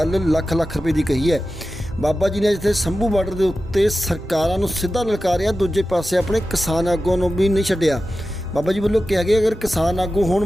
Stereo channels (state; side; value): normal; both; correlation 0.93